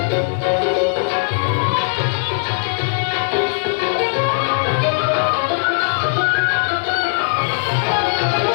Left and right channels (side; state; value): right; silent; digital silence